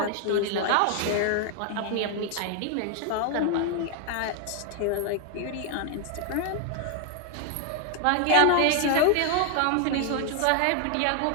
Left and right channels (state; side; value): different; both; correlation 0.00